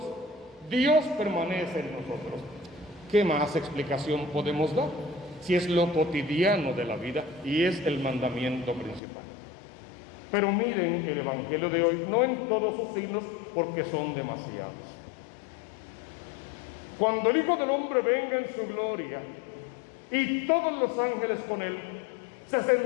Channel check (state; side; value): drops out; right; at 9.0 s